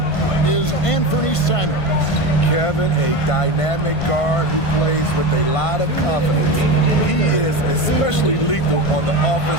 is Anthony Simons. Kevin, a dynamic guard who plays with a lot of confidence. He is especially lethal on the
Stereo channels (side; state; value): right; late; 1.5 ms